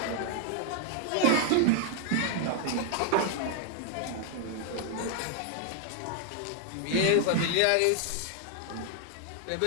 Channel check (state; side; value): different; both; correlation 0.00